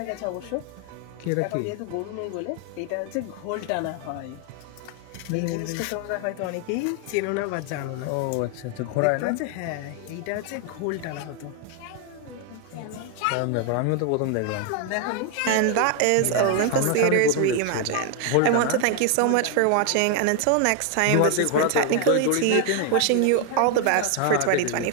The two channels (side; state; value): both; different; correlation 0.01